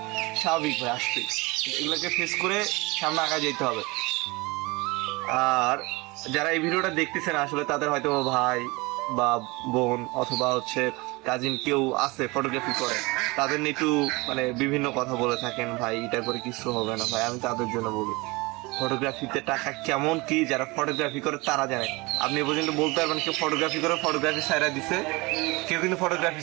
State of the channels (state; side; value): quieter; left; 24.3 dB